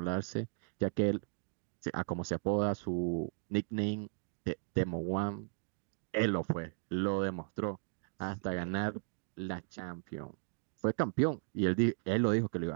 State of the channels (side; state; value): left; silent; digital silence